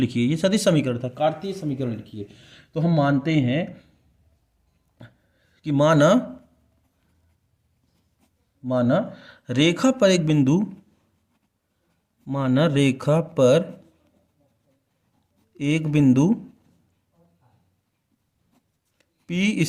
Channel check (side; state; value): both; identical; correlation 1.00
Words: ये सदिश समीकरण था, कार्तीय समीकरण लिखिए, तो हम मानते हैं कि माना रेखा पर एक बिंदु, माना रेखा पर एक बिंदु P